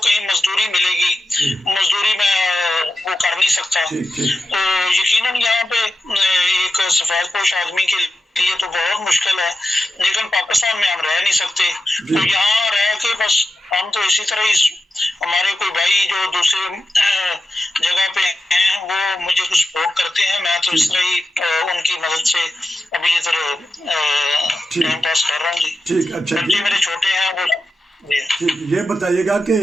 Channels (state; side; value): normal; both; correlation 0.90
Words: کہیں مزدوری ملے گی، مزدوری میں وہ کر نہیں سکتا، تو یقیناً یہاں پہ ایک سفید پوش آدمی کے لیے تو بہت مشکل ہے، لیکن پاکستان میں ہم رہ نہیں سکتے، تو یہاں رہ کے بس ہم تو اسی طرح ہی، ہمارے کوئی بھائی جو دوسرے جگہ پہ ہیں وہ مجھے کچھ سپورٹ کرتے ہیں، میں تو اس طرح ہی ان کی مدد سے ابھی ادھر ٹائم پاس کر رہا ہوں جی۔ ٹھیک، اچھا بچے میرے چھوٹے ہیں وہ ٹھیک، یہ بتائیے گا کہ